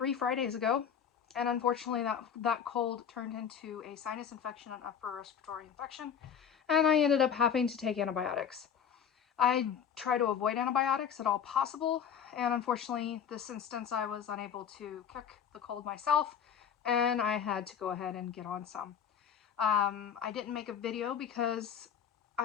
Fridays ago, and unfortunately that cold turned into a sinus infection and upper respiratory infection, and I ended up having to take antibiotics. I try to avoid antibiotics at all possible, and unfortunately this instance I was unable to kick the cold myself, and I had to go ahead and get on some. I didn't make a video because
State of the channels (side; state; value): right; quieter; 8.0 dB